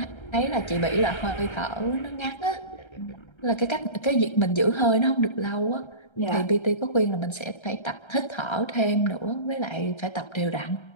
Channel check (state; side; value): late; right; 1.3 ms